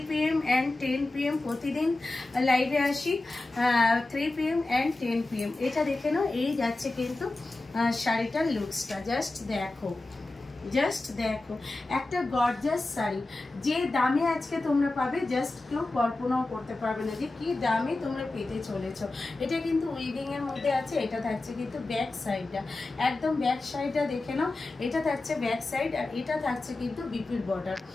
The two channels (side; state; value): right; quieter; 3.0 dB